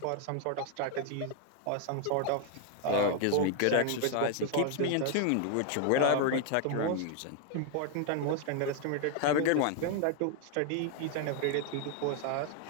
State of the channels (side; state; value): both; different; correlation 0.00